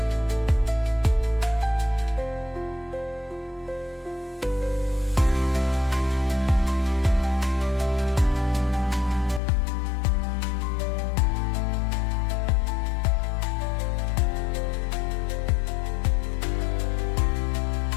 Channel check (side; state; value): right; drops out; at 9.4 s